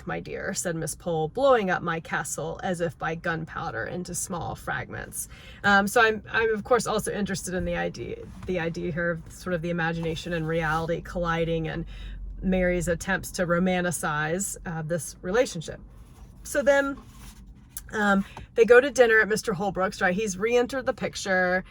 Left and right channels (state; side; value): identical; both; correlation 1.00